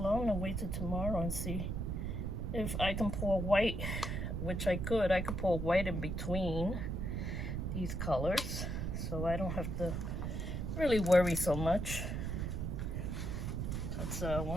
and wait till tomorrow and see if I can pour white, which I could pour white in between these colors, so I don't have to really worry so much. But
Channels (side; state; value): right; noise; rumble, 2 dB below the sound